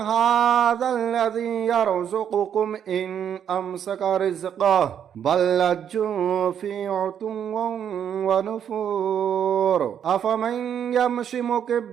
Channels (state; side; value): quieter; left; 8.8 dB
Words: الذي يرزقكم إن أمسك رزقه بل لجوا في عتو ونفور أفمن يمشي